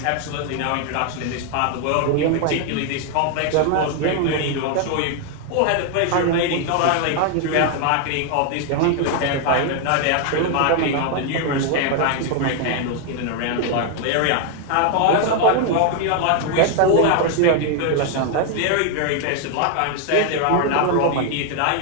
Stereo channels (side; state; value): both; different; correlation 0.00